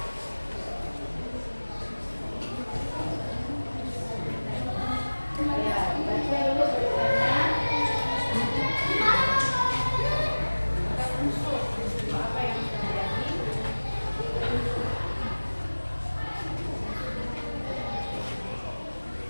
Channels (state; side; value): inverted; both; correlation -1.00